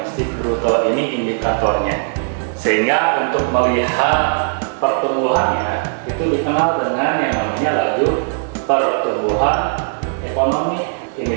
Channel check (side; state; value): left; silent; 67 dB below the other